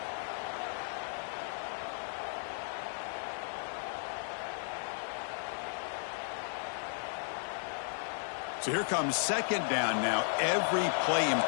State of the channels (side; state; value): right; silent; digital silence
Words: So here comes second down now. Every play